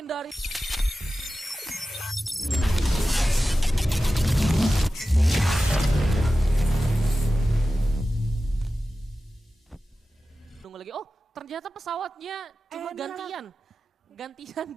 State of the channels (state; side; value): normal; both; correlation 0.94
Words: Tunggu lagi, oh ternyata pesawatnya cuma gantian